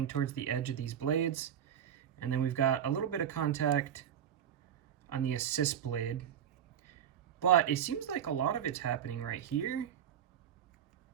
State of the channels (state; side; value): quieter; left; 9.3 dB